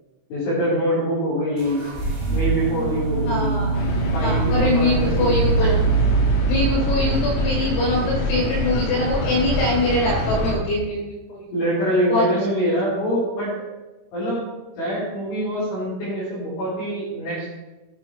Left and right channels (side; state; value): right; late; 26 ms